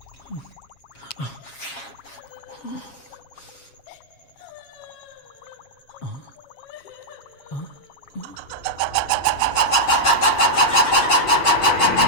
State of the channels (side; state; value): right; late; 7.3 ms